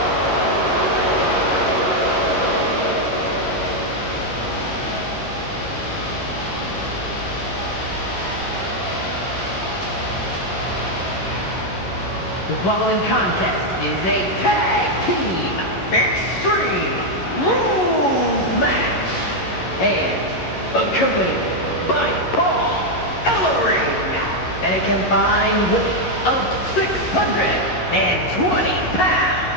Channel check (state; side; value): late; right; 11 ms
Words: The following contest is a tag team extreme rules match and accompanied by Paul Ellering and a combined weight of 620 pounds.